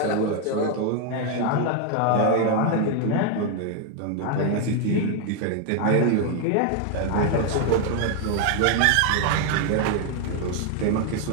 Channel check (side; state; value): both; different; correlation 0.01